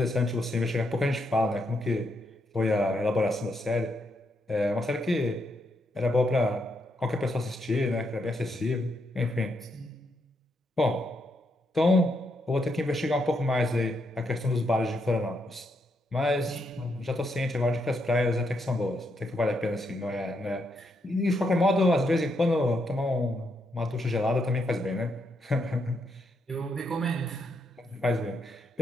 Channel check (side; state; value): both; normal; correlation 0.79